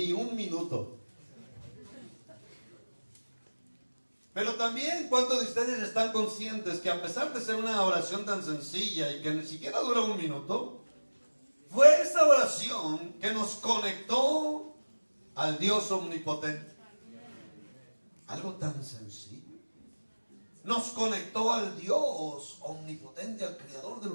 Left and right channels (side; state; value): both; inverted; correlation -1.00